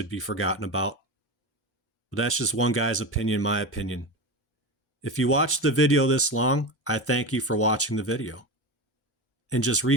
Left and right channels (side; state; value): both; normal; correlation 0.22